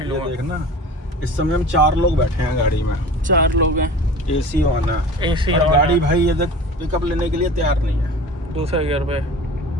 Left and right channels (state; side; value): normal; both; correlation 0.39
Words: ये हुआ। देख ना, इस समय हम 4 लोग बैठे हैं गाड़ी में, 4 लोग हैं, एसी ऑन है, एसी और ऑन गाड़ी है। भाई ये देख पिकअप लेने के लिए तैयार नहीं है। दूसरे गियर पे